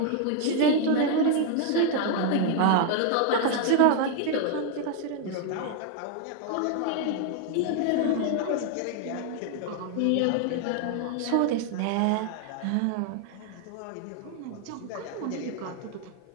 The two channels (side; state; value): both; different; correlation 0.00